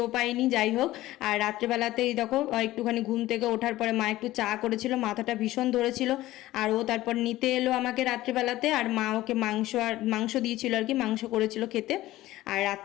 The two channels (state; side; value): quieter; right; 16.3 dB